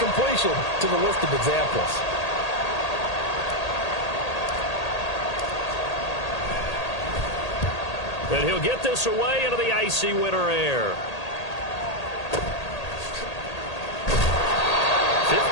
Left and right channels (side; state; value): right; late; 1.8 ms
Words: to the list of examples. And he'll get this away into the icy winter air.